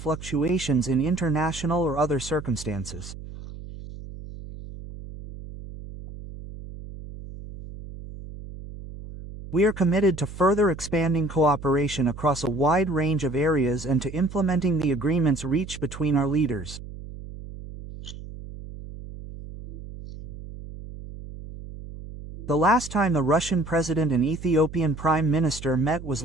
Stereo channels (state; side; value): noise; right; hum, 13 dB below the sound